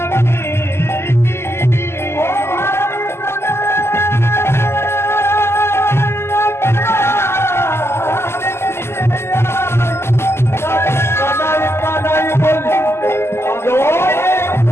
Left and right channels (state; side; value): late; right; 0.12 ms